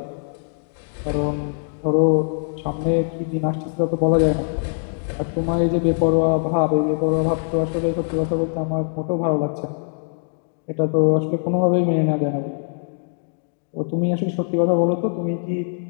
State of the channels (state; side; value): silent; right; digital silence